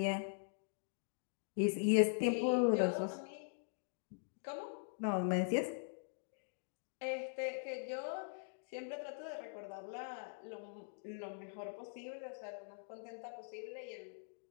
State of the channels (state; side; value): silent; right; digital silence